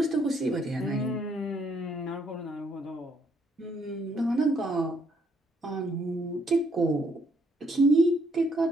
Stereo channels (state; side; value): normal; both; correlation 0.70